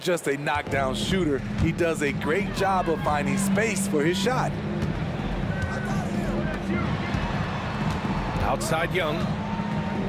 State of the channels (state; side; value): identical; both; correlation 1.00